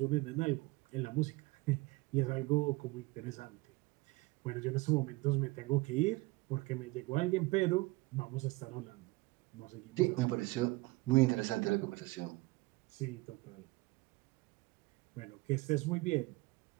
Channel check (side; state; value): left; quieter; 22.5 dB